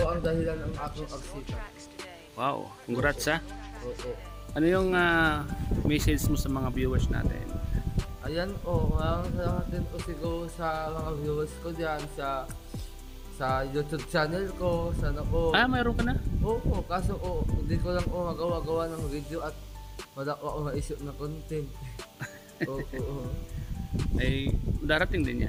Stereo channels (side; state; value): both; identical; correlation 1.00